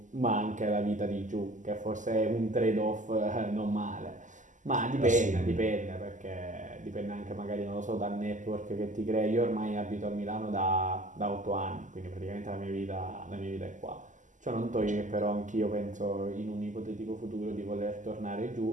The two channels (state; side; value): late; left; 0.37 ms